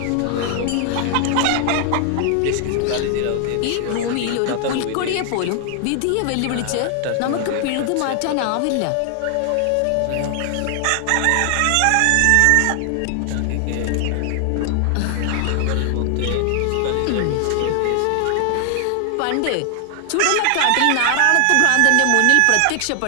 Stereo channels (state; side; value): different; both; correlation 0.00